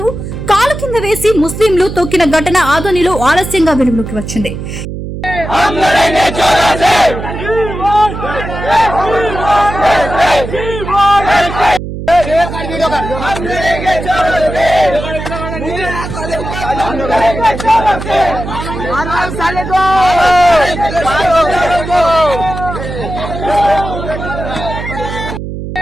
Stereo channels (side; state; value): right; noise; hum, 7 dB below the sound